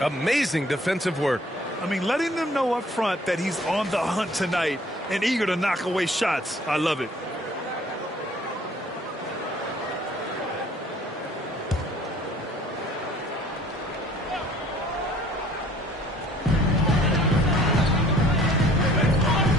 Amazing defensive work. I mean, letting them know up front that he's on the hunt tonight and eager to knock away shots. I love it.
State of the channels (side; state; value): both; normal; correlation 0.55